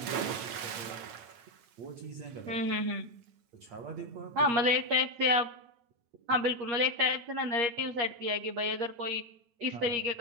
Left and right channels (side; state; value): left; late; 9.1 ms